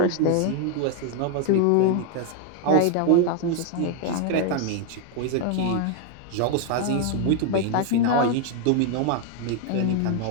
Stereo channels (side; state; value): both; different; correlation 0.00